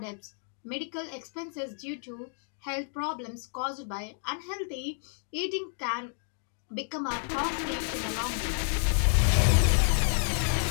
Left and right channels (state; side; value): silent; right; 58 dB below the other